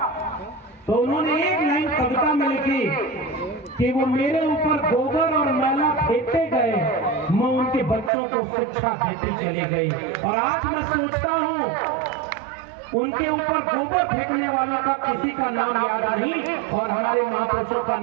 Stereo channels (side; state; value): left; drops out; at 8.1 s